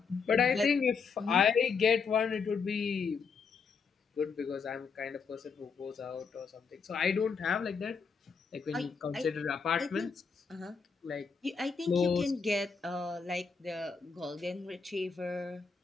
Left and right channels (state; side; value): quieter; right; 5.4 dB